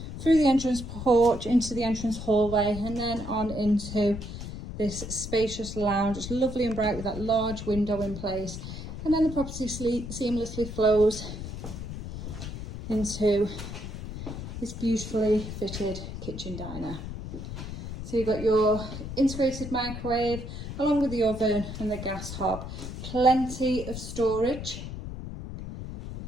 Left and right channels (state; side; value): noise; left; rumble, 8 dB below the sound